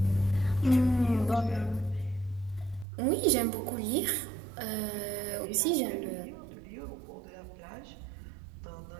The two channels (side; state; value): left; drops out; at 2.9 s